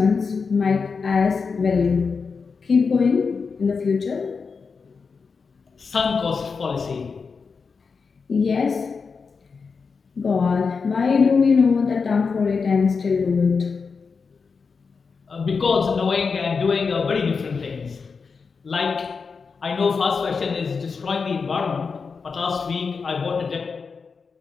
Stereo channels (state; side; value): quieter; right; 5.1 dB